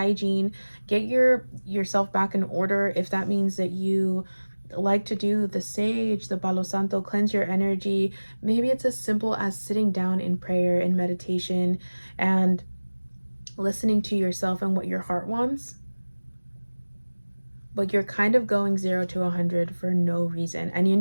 Get yourself back in order. If that means that you like to do the sage, the Palo Santo, cleanse your energy. Maybe it's as simple as sitting down in prayer and meditation and listening to yourself and what your heart wants. But you're kind of going 0 to 100 for no reason. And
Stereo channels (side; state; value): both; inverted; correlation -1.00